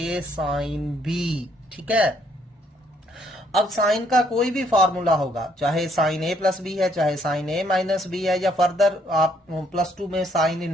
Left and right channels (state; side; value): normal; both; correlation 0.68